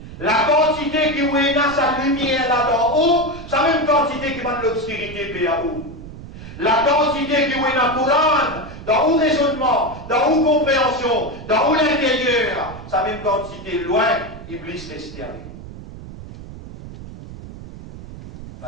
La quantité qui est dans sa lumière là-dedans haut, c'est la même quantité qui va de l'obscurité là haut. La quantité qui est dans le Coran, dans le raisonnement, dans la compréhension, dans l'intérieur, c'est la même quantité loin, Iblis reste avec.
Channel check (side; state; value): right; noise; rumble, 14 dB below the sound